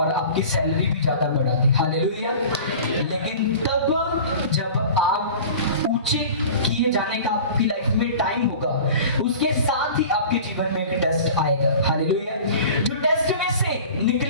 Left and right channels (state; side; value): inverted; both; correlation -0.40